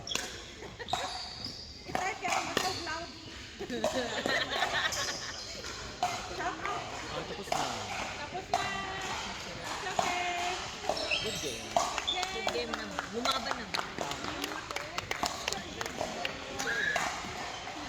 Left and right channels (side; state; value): both; identical; correlation 1.00